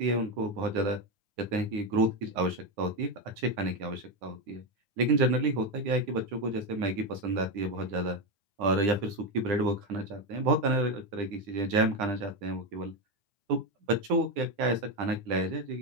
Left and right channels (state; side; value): late; left; 9.9 ms